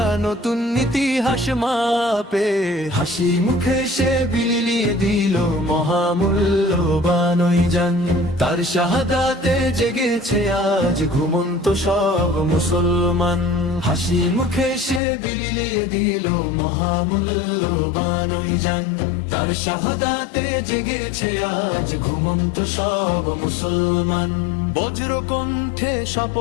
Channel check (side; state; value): right; drops out; at 15.0 s